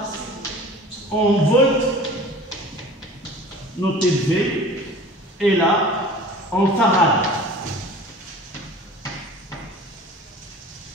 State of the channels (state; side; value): normal; both; correlation 0.42